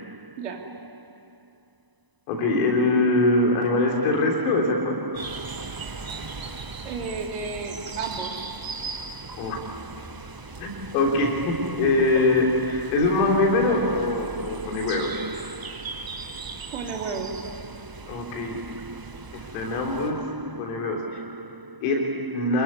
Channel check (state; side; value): late; left; 1.0 ms